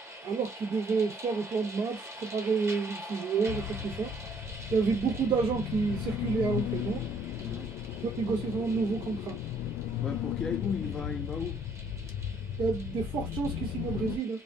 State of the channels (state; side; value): normal; both; correlation 0.64